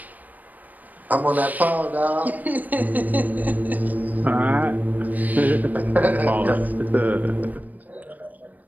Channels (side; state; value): left; late; 0.081 ms